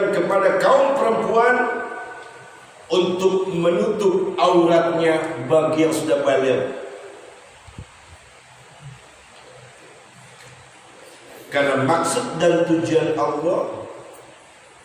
kepada kaum perempuan untuk menutup auratnya bagi yang sudah baligh. Karena maksud dan tujuan Allah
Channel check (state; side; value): identical; both; correlation 1.00